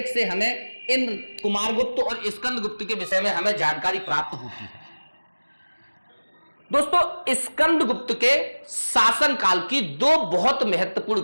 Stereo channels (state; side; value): inverted; both; correlation -1.00